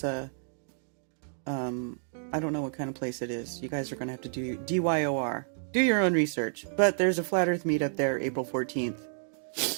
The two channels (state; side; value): silent; left; digital silence